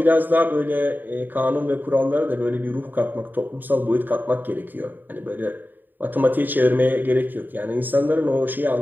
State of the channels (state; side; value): late; left; 0.090 ms